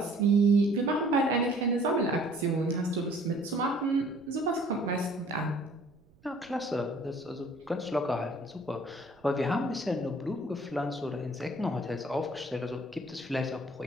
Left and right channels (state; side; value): noise; right; rumble, 29 dB below the sound